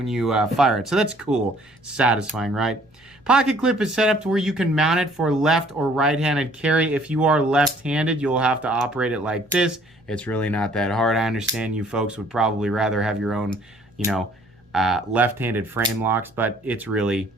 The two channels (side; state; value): both; normal; correlation 0.58